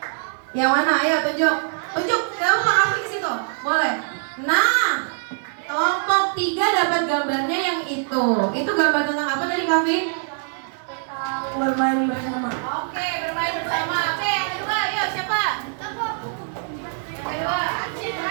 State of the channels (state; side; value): silent; left; digital silence